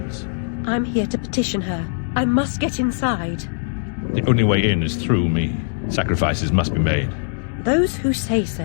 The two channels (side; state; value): right; silent; digital silence